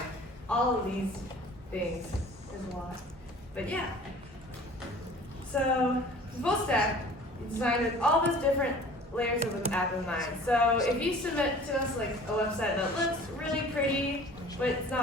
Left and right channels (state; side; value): normal; both; correlation 0.46